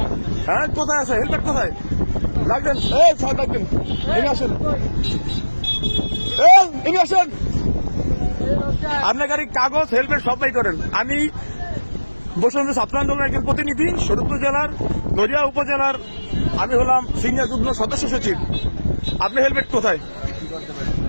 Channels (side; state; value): both; inverted; correlation -1.00